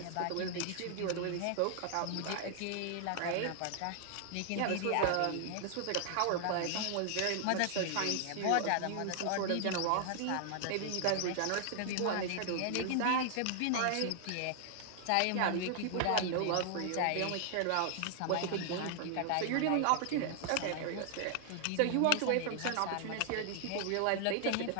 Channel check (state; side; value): different; both; correlation 0.00